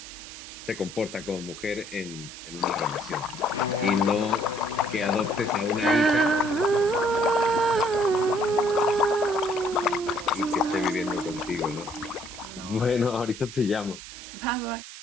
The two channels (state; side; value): noise; right; hiss, 14 dB below the sound